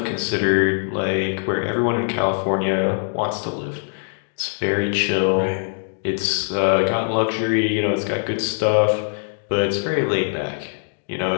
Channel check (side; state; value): right; silent; digital silence